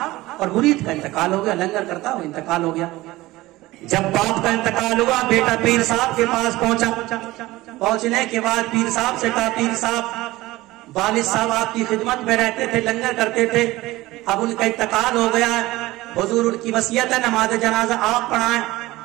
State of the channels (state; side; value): quieter; left; 18.6 dB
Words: اور مرید کا انتقال ہو گیا. لنگر کرتا وہ انتقال ہو گیا. جب باپ کا انتقال ہوا بیٹا پیر صاحب کے پاس پہنچا. پہنچنے کے بعد پیر صاحب سے کہا پیر صاحب والد صاحب آپ کی خدمت میں رہتے تھے، لنگر کرتے تھے، اب ان کا انتقال ہو گیا ہے، حضور ان کی وصیت ہے نماز جنازہ آپ پڑھائیں.